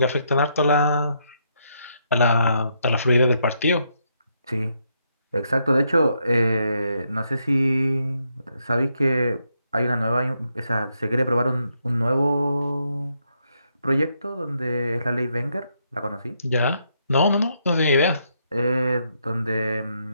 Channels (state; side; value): inverted; both; correlation -0.77